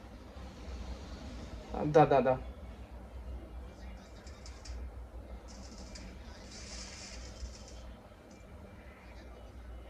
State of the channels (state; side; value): identical; both; correlation 1.00